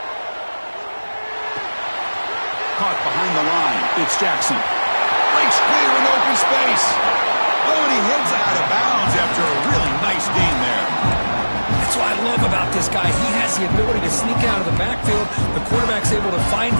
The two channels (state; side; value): inverted; both; correlation -1.00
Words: Caught behind the line. It's Jackson. Breaks clear in open space. Oh, and he heads out of bounds after a really nice gain there. That's what I love about this guy. He has the ability to sneak out of the backfield. The quarterback's able to find